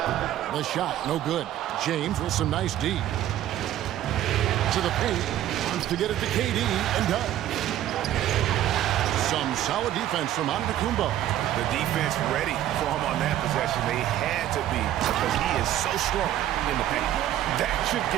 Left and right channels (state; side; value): quieter; left; 12.4 dB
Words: The shot, no good. James with some nice D. To the paint. Wants to get it to KD and does. Some solid defense from Antetokounmpo. The defense ready for him on that possession. They had to be because he is so strong in the paint. That should